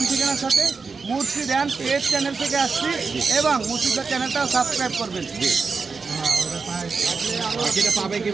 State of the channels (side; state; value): left; quieter; 4.8 dB